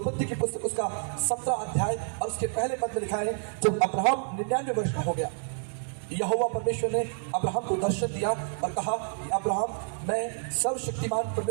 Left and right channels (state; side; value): silent; left; 59 dB below the other